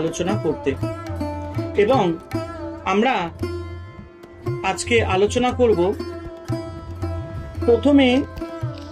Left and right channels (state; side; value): identical; both; correlation 1.00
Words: করতে। এবং আমরা আজকে আলোচনা করব, প্রথমে